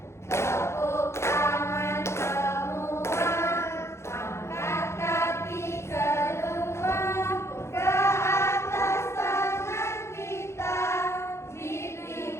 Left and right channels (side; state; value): right; late; 0.13 ms